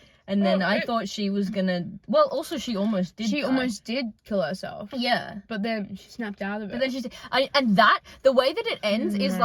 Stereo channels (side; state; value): both; identical; correlation 1.00